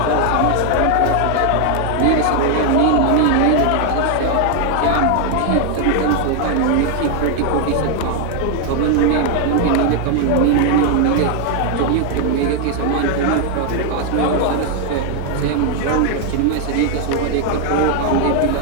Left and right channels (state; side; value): different; both; correlation 0.00